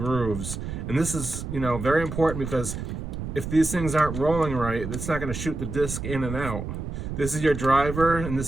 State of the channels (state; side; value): noise; right; rumble, 6 dB below the sound